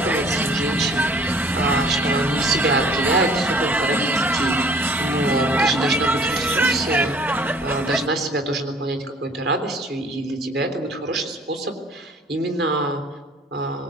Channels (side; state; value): both; normal; correlation 0.53